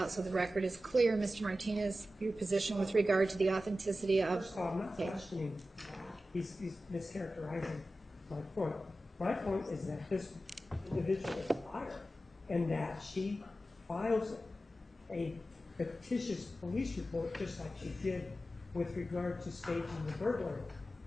so the record is clear, Mr. Martinez, your position with regard to the authenticity of First of all, I'm not tape. questioning. He's mischaracterizing my point. My point is that this individual is a liar, and that she files a fictitious police report just like she did with regard to staging the burglary.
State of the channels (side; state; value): both; normal; correlation 0.93